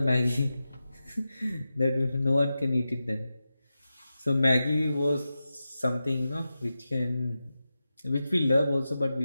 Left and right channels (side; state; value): both; inverted; correlation -0.92